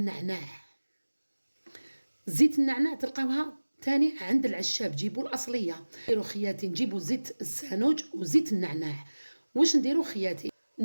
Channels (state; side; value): inverted; both; correlation -1.00